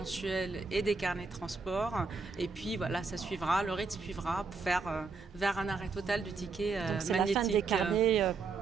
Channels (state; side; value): quieter; left; 4.5 dB